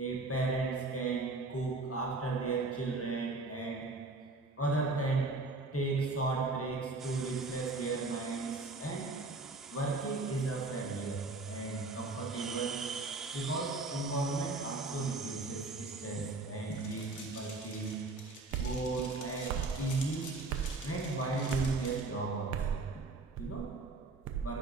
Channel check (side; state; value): left; quieter; 3.4 dB